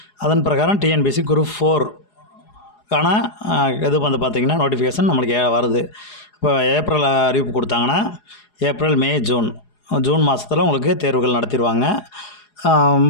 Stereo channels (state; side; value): late; right; 4.8 ms